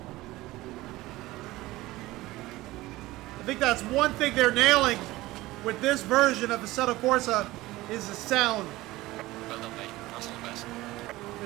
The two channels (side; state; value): left; quieter; 18.4 dB